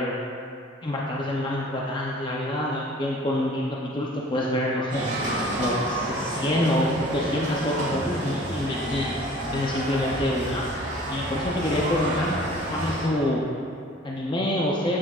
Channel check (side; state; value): both; normal; correlation 0.49